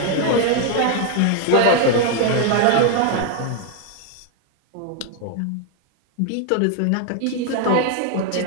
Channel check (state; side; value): different; both; correlation 0.01